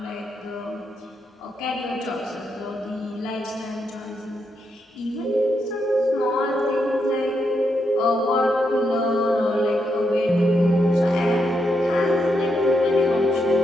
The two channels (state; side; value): normal; both; correlation 0.81